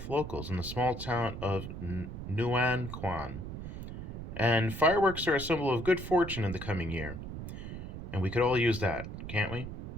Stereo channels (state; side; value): noise; right; rumble, 8 dB below the sound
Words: locals in the small town of Nuanquan. And fireworks are a symbol of good fortune in the coming year. And we could all use that, can't we?